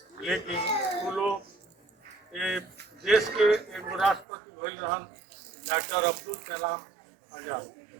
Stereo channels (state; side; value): drops out; left; at 4.2 s